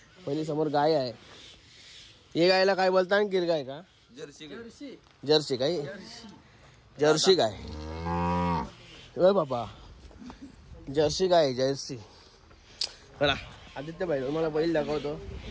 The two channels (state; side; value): identical; both; correlation 1.00